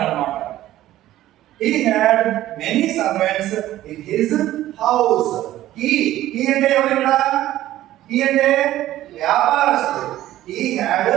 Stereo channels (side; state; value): left; quieter; 14.2 dB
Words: అన్నమాట. He had many servants in his house. He అంటే ఎవరు? He అంటే వ్యాపారస్తుడు. He had